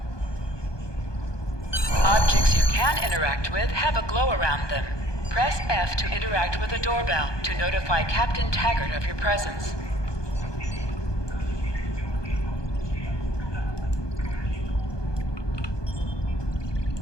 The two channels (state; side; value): late; right; 1.2 ms